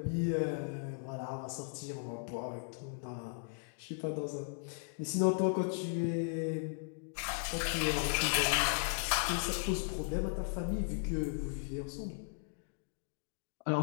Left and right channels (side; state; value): right; silent; digital silence